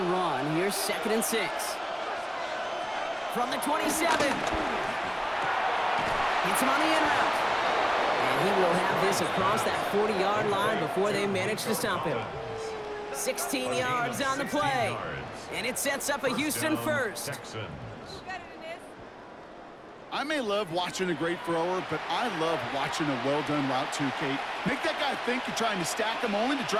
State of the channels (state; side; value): identical; both; correlation 1.00